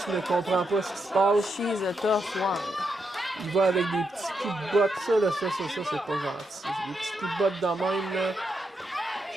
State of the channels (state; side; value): normal; both; correlation 0.83